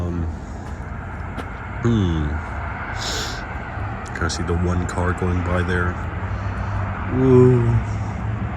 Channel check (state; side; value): identical; both; correlation 1.00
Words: kind of see the one car going by there. Ooh.